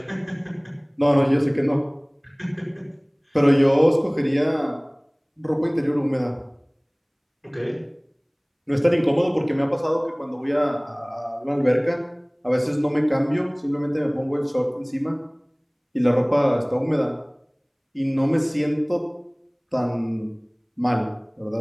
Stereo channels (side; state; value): both; identical; correlation 1.00